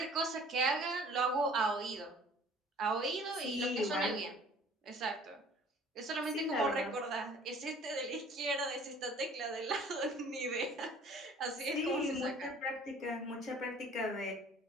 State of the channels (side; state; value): both; normal; correlation 0.51